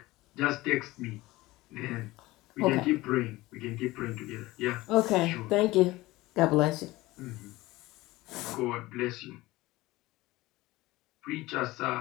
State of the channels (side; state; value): right; quieter; 19.1 dB